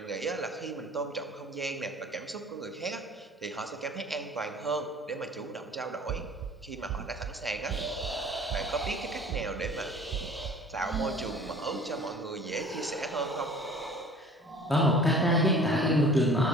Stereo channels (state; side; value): normal; both; correlation 0.47